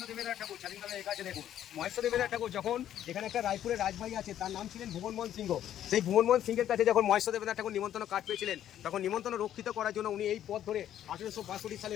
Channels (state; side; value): quieter; right; 11.1 dB